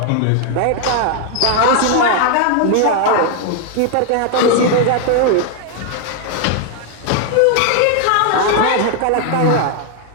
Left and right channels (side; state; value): both; different; correlation 0.01